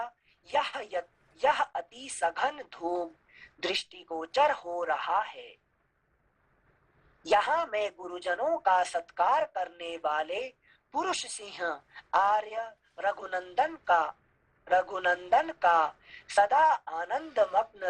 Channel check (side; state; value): both; identical; correlation 1.00